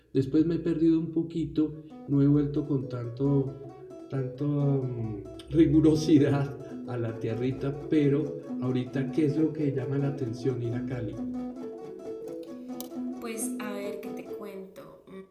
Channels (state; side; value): identical; both; correlation 1.00